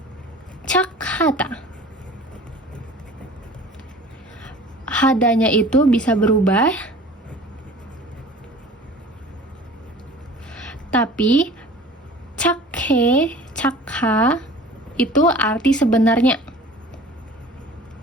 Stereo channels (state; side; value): normal; both; correlation 0.43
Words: cakhata. Hadanya itu bisa berubah. Tapi cakhe, cakha itu arti sebenarnya.